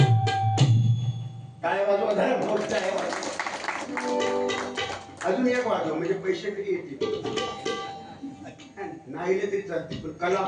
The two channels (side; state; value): both; identical; correlation 1.00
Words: काय वाजवा धर्म आहे. अजून एक वाजव, म्हणजे पैसे कधी येतील. नाही तरी चालतील, पण कला